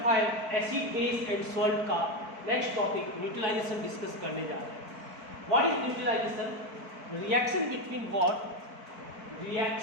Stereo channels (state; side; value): late; left; 4.5 ms